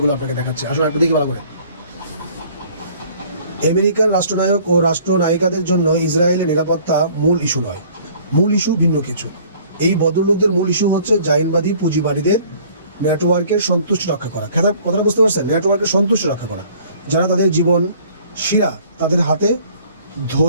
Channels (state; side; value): inverted; both; correlation -0.54